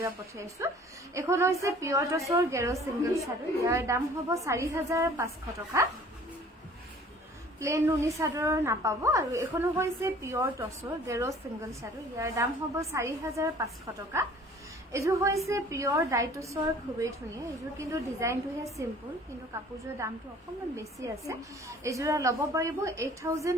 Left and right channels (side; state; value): both; normal; correlation 0.51